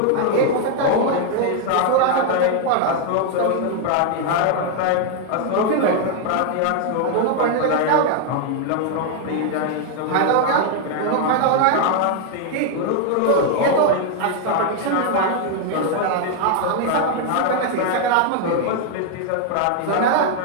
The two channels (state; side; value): different; both; correlation 0.00